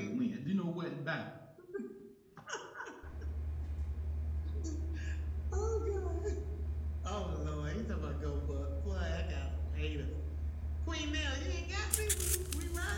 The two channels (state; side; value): identical; both; correlation 1.00